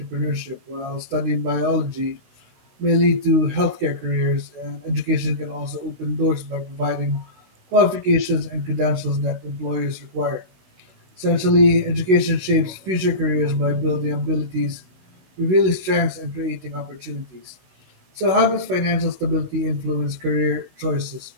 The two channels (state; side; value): late; left; 16 ms